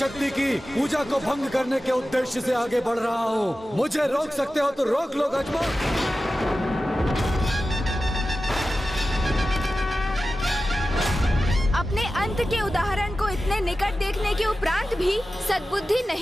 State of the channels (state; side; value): normal; both; correlation 0.94